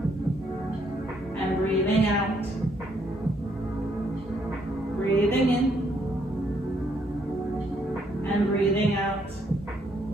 and breathing out. Breathing in and breathing out.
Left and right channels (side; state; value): both; normal; correlation 0.71